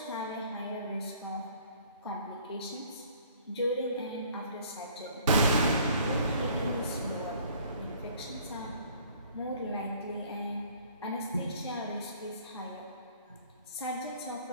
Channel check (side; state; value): both; inverted; correlation -0.56